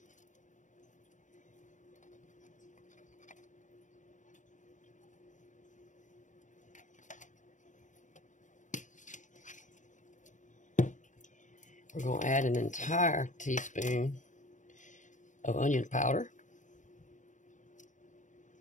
We're going to add an entire teaspoon of onion powder.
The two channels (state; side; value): late; right; 0.36 ms